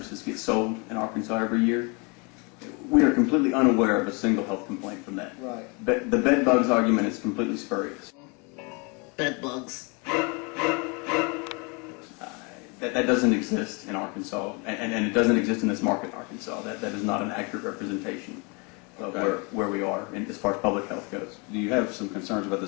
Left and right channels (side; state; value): right; quieter; 31.4 dB